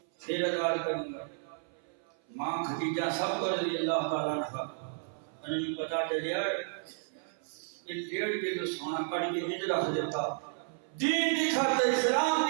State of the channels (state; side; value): silent; left; 56 dB below the other